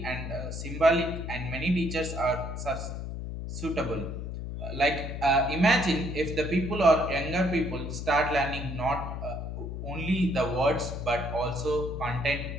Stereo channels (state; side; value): noise; left; hum, 6 dB below the sound